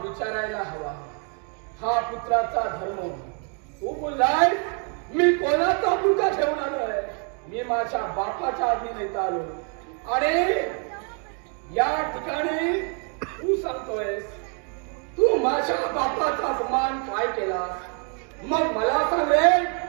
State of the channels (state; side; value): quieter; left; 39.9 dB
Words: विचारायला हवा. हा पुत्राचा धर्म. तू बोललाय मी कोणाचा पुडका ठेवून आलोय, मी माझ्या बापाच्या आज्ञेने इथं आलो. आणि या ठिकाणी तू सांगतोयस तू माझ्या बापाचा अपमान काय केला. मग मला सांग रे,